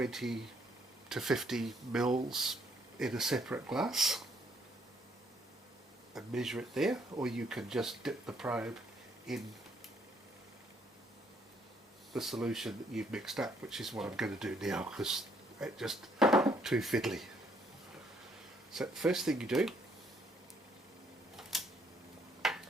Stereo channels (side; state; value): both; normal; correlation 0.69